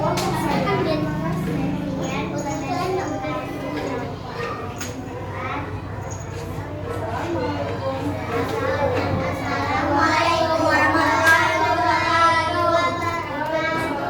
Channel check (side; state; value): both; identical; correlation 1.00